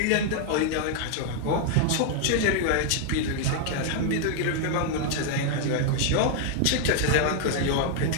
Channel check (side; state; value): both; different; correlation 0.00